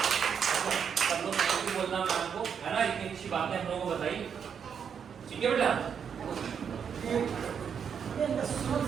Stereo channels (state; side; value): quieter; left; 7.3 dB